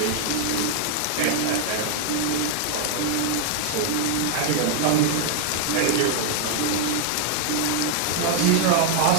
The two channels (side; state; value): both; different; correlation 0.00